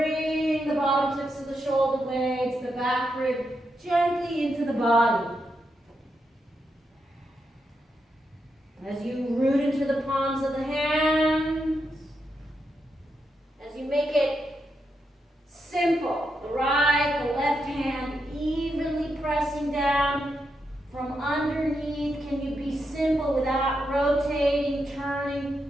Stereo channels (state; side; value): normal; both; correlation 0.84